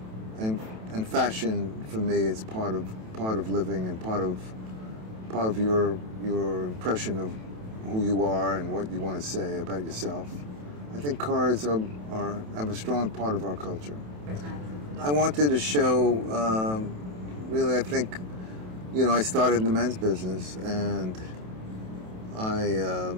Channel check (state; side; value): late; left; 27 ms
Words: fashion for me is part of living and part of your impression of who you are and what you want to say about yourself. I think cars have a strong part of our culture. I wanted to show, really, I think, you know, I started in the men's business, and